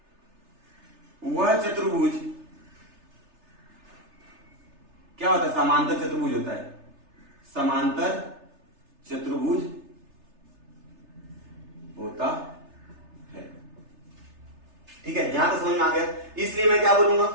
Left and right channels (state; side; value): late; left; 3.3 ms